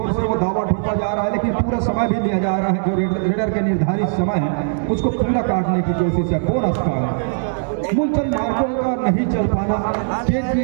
से वो दावा ठोका जा रहा है, लेकिन पूरा समय भी लिया जा रहा है। जो रेडर के निर्धारित समय है उसको पूरा काटने की कोशिश है। बोनस का है मूलचंद मार्गों का नहीं चल पाना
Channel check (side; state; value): left; silent; digital silence